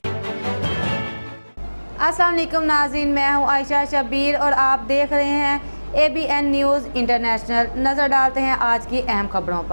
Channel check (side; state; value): both; inverted; correlation -1.00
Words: السلام علیکم ناظرین، میں ہوں عائشہ شبیر اور آپ دیکھ رہے ہیں ABN نیوز انٹرنیشنل۔ نظر ڈالتے ہیں آج کی اہم خبروں